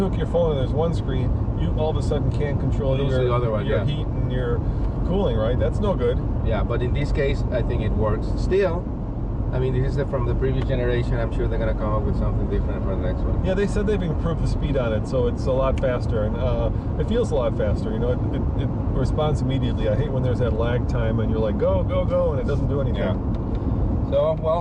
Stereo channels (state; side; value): identical; both; correlation 1.00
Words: hook your phone and there's one screen, you all of a sudden can't control the other one, your heat and your cooling, right? That's no good. Yeah, but in this case, I think it works. Still, I mean, this is from the previous generation. I'm sure they're going to come up with something different for the next one. Yeah, they said they've improved the speed on it, so it's a lot faster, and it feels a lot faster. You know, it responds immediately. I hate when there's that lag time and you're like, go, go, go, and it doesn't do anything. Yeah. So,